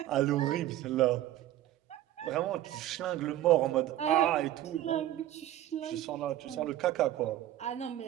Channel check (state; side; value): quieter; left; 13.4 dB